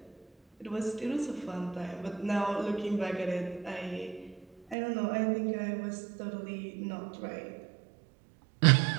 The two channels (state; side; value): drops out; left; at 4.8 s